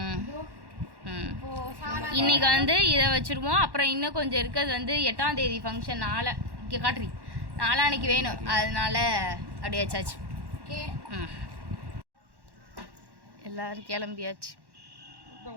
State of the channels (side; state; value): left; late; 1.1 ms